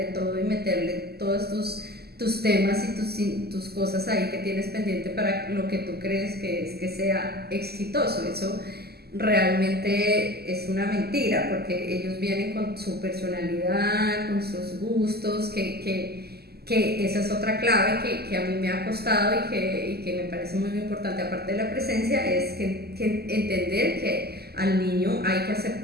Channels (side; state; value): left; late; 0.46 ms